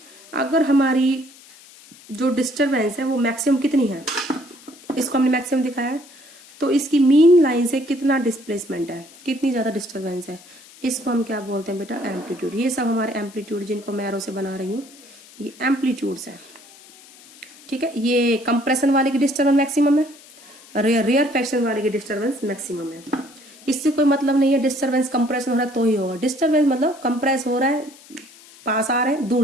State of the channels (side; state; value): left; noise; hiss, 23 dB below the sound